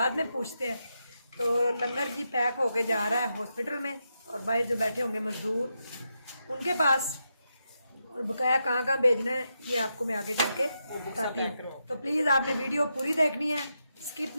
में पूछते हैं। तो लंगर जी पैक होके जा रहा है हॉस्पिटल में, और भाई जो बैठे होंगे मजदूर उनके पास, और बकाया कहाँ कहाँ भेजना है ये आपको मैं आगे चल के बताती हूँ। तो प्लीज़ आपने वीडियो पूरी देखनी है, स्किप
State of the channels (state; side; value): inverted; both; correlation -0.85